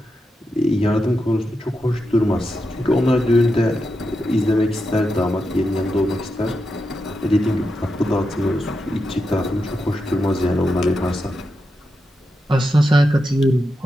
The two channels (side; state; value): both; normal; correlation 0.87